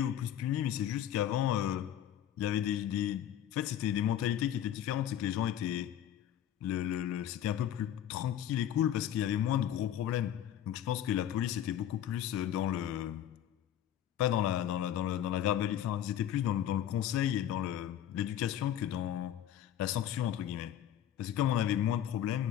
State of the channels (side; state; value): right; quieter; 11.0 dB